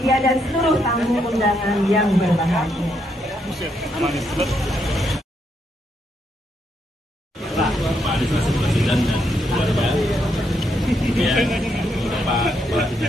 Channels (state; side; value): normal; both; correlation 0.77